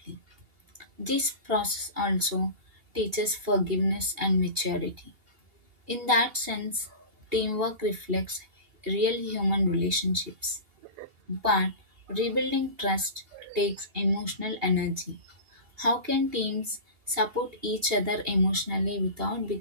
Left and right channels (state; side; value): late; left; 2.8 ms